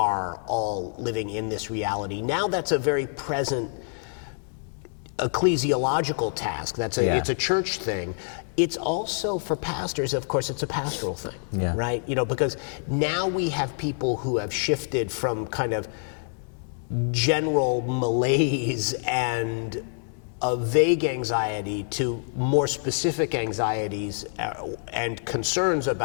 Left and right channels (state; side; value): silent; right; 58 dB below the other